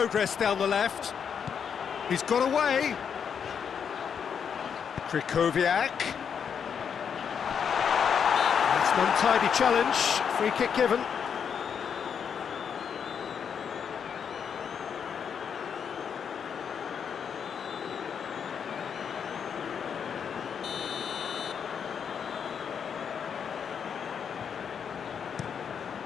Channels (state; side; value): quieter; right; 7.3 dB